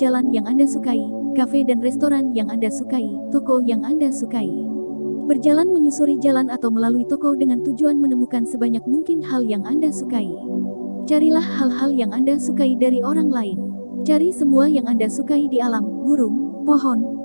yang Anda sukai, kafe dan restoran yang Anda sukai, toko yang Anda sukai. Berjalan menyusuri jalan atau melalui toko dengan tujuan menemukan sebanyak mungkin hal yang Anda sukai. Carilah hal-hal yang Anda sukai dari orang lain. Cari semua yang Anda sukai di alam, burung,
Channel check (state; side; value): inverted; both; correlation -1.00